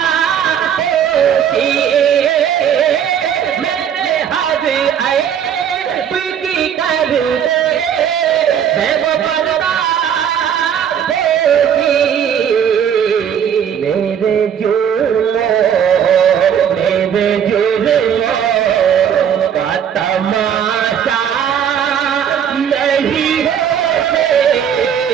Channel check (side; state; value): left; quieter; 8.6 dB